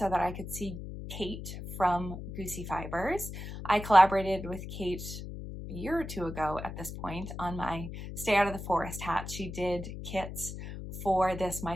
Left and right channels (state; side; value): noise; left; hum, 9 dB below the sound